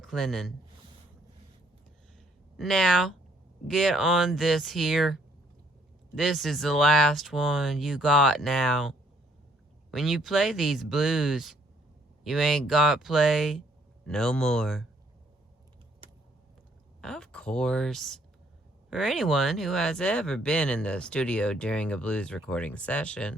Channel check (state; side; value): normal; both; correlation 0.66